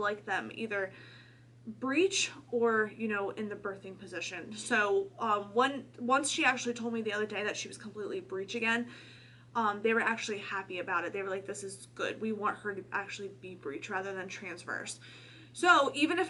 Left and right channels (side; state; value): both; identical; correlation 1.00